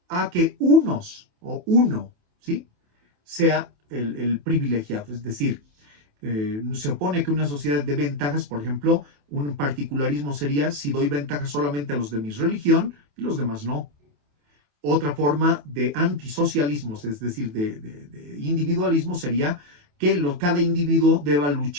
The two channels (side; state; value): left; late; 28 ms